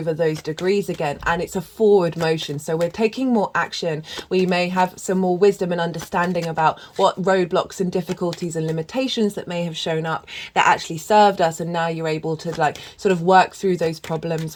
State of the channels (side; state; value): both; identical; correlation 1.00